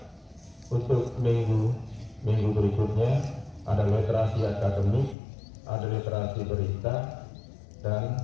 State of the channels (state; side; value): drops out; right; at 5.2 s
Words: untuk minggu berikutnya ada literasi akademik, ada literasi berita, dan